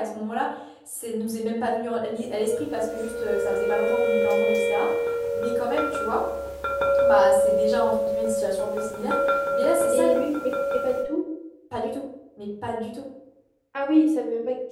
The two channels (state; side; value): identical; both; correlation 1.00